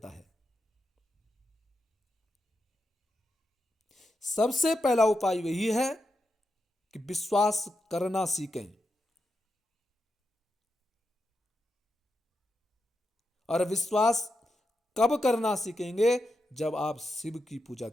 है। सबसे पहला उपाय वही है कि विश्वास करना सीखें, और विश्वास कब करना सीखेंगे, जब आप शिव की पूजा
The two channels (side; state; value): both; normal; correlation 0.86